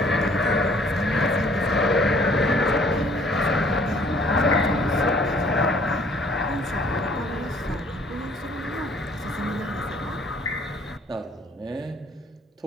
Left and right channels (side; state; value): both; normal; correlation 0.58